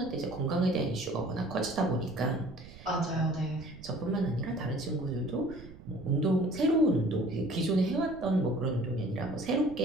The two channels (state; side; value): noise; right; rumble, 18 dB below the sound